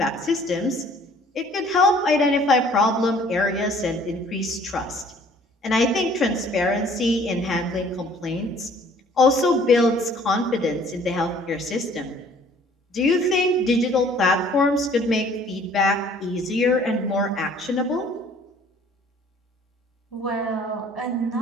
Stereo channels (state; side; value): normal; both; correlation 0.56